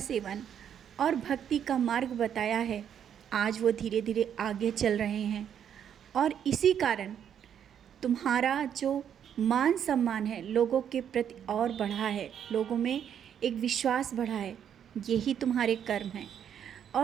और भक्ति का मार्ग बताया है, आज वो धीरे धीरे आगे चल रहे हैं, और इसी कारण तुम्हारा जो मान सम्मान है लोगों के प्रति और बढ़ा है, लोगों में एक विश्वास बढ़ा है। यही तुम्हारे कर्म हैं।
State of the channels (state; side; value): quieter; left; 8.9 dB